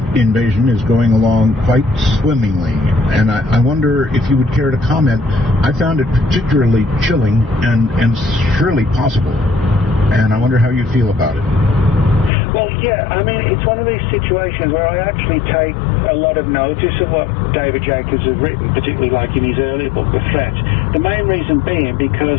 invasion is going along quite swimmingly. And I wonder if you would care to comment. I found it particularly chilling and surely possible, and I wonder how you feel about it. Well, yeah, I mean, it's one of these situations where I actually take a lot of notice of what David Jacobs has written, particularly like in his earlier book, The Threat. The main reason being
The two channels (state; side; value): drops out; right; at 12.3 s